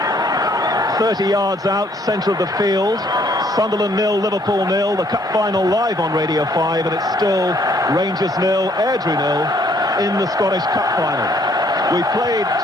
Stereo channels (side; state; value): both; normal; correlation 0.65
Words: 30 yards out, centre of the field. Sunderland 0, Liverpool 0. The cup final live on Radio 5, and it's still Rangers 0, Airdrie 0 in the Scottish Cup final. We played